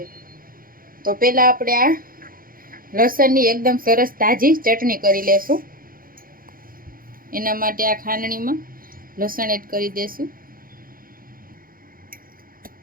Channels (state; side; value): late; left; 0.41 ms